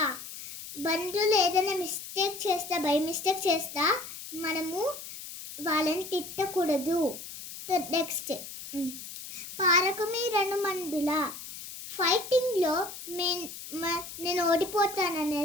బంధువులు ఏదైనా మిస్టేక్ చేస్తా, బై మిస్టేక్ చేస్తా మనము వాళ్ళని తిట్టకూడదు. నెక్స్ట్, పారకుమి రణమండుల. ఫైటింగ్లో నేను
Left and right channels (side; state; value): left; noise; hiss, 11 dB below the sound